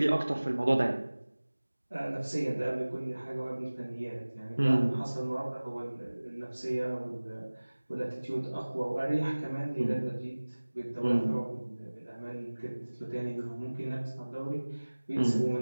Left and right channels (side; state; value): both; inverted; correlation -1.00